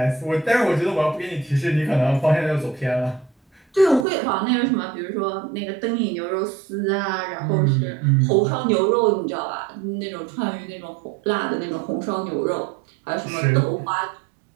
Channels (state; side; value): drops out; left; at 4.0 s